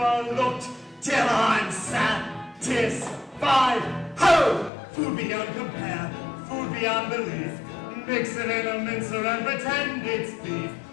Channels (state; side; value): drops out; right; at 4.7 s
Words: till I'm satisfied. 5. Ho! Food beyond compare, food beyond belief. Mix it in a mincer and pretend it's beef.